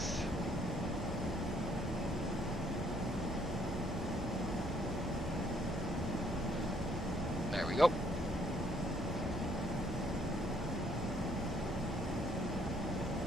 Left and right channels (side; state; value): both; normal; correlation 0.66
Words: There we go.